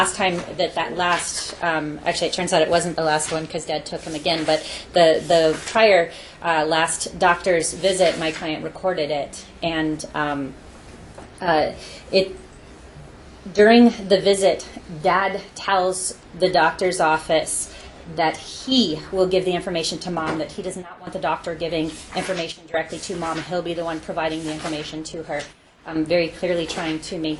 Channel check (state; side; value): identical; both; correlation 1.00